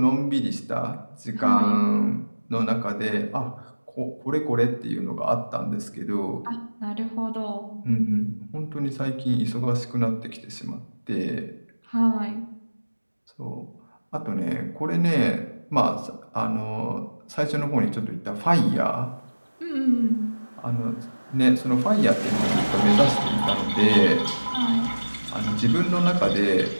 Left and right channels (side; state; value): both; inverted; correlation -1.00